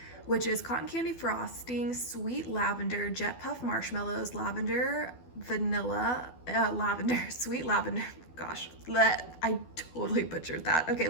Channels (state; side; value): late; right; 12 ms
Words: which is cotton candy frosting, sweet lavender, jet puff marshmallows, lavender, vanilla, sweet lavender. Gosh, I totally butchered that. Okay,